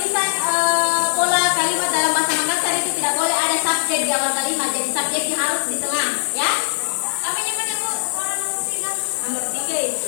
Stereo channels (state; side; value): silent; right; digital silence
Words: pola kalimat dalam bahasa Makassar itu tidak boleh ada subjek di awal kalimat, jadi subjeknya harus di tengah, ya. Nomor 3